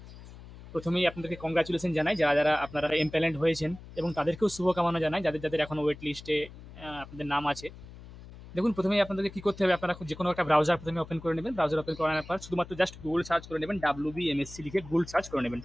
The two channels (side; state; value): left; noise; hum, 17 dB below the sound